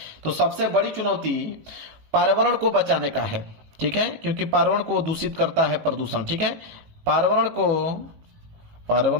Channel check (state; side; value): late; left; 18 ms